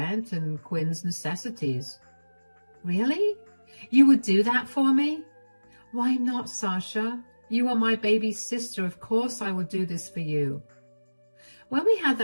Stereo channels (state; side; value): inverted; both; correlation -1.00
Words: and Quinn's necessities. Really? You would do that for me? Why not, Sasha? You are my baby's sister. Of course I would do this for you. When we had